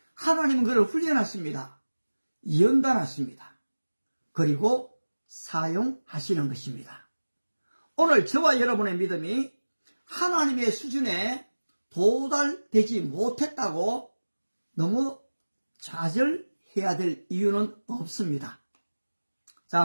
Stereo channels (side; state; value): both; inverted; correlation -1.00